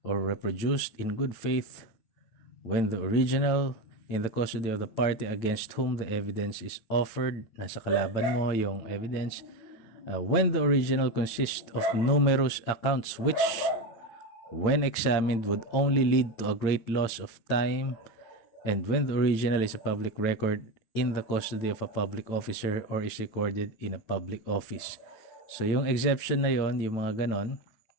or reproduced in good faith when the original in the custody of the party against whom the evidence is offered, nasa kalaban mo yung evidence, when the original consists of numerous accounts which, when examined, would only lead to a great loss of time, and when the original is a public record in the custody of a public officer or is recorded in a public office. So yung exception na yon, yung mga ganon,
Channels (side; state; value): right; late; 9.3 ms